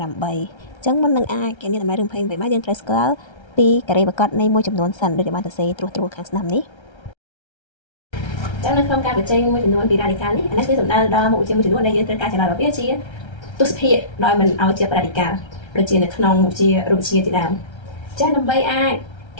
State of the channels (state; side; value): late; right; 1.3 ms